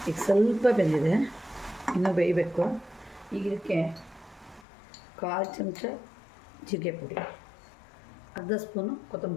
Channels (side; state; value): right; drops out; at 4.7 s